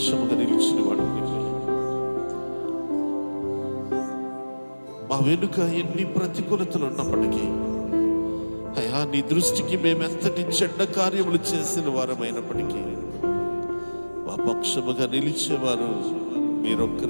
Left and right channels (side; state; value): both; inverted; correlation -1.00